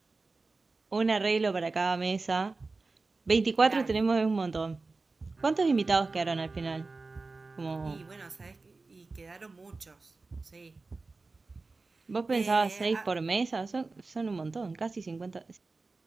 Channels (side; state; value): left; quieter; 3.7 dB